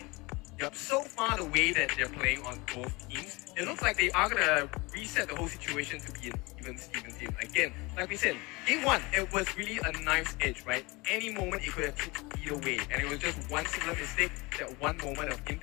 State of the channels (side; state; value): right; quieter; 24.7 dB